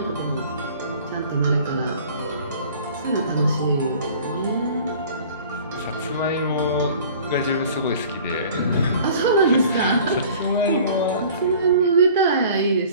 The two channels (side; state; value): both; inverted; correlation -0.47